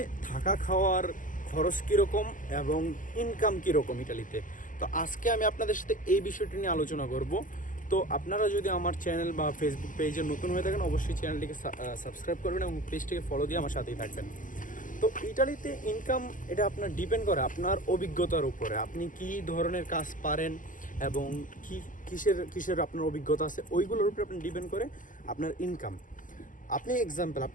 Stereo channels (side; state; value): right; late; 0.38 ms